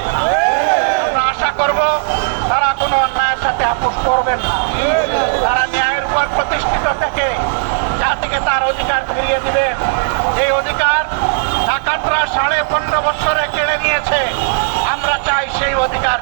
না। আমরা আশা করব তারা কোনো অন্যায়ের সাথে আপোষ করবেন না। তারা ন্যায়ের উপর প্রতিষ্ঠিত থেকে জাতিকে তার অধিকার ফিরিয়ে দিবেন। এই অধিকার ডাকাতরা 15.5 বছরে কেড়ে নিয়েছে। আমরা চাই সেই অধিকার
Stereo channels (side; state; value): left; silent; digital silence